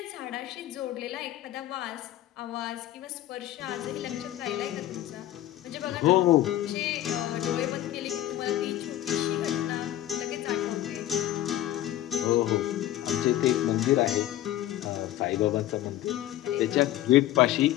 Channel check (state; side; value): quieter; right; 13.7 dB